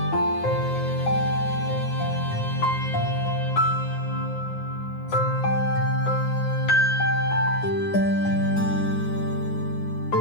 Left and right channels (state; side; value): late; right; 9.6 ms